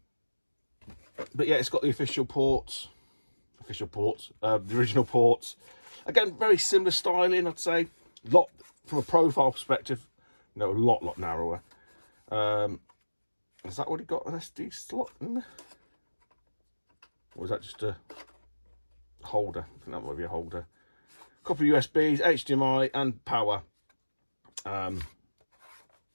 But yeah, it's got the official ports, the original ports. Again, very similar styling, I'd say. Lot from a profile perspective, you know, a lot narrower. Has that already got an SD slot in there? Or is that just a holder? I think that might be a holder. Couple of USBs, HDMI, and power.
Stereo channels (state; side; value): inverted; both; correlation -1.00